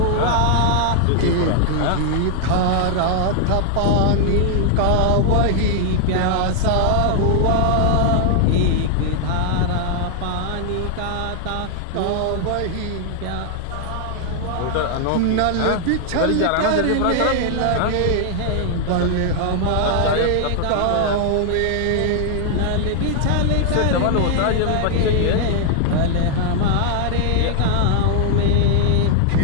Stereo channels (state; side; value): different; both; correlation 0.00